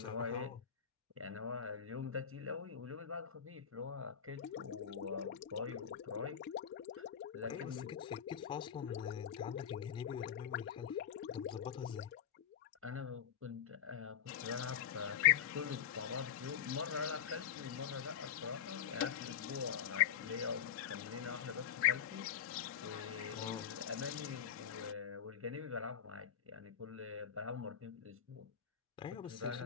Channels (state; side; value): quieter; right; 8.6 dB